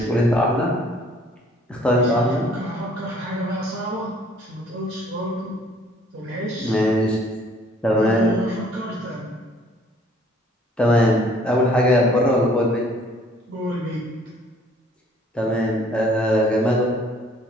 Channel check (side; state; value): both; normal; correlation 0.58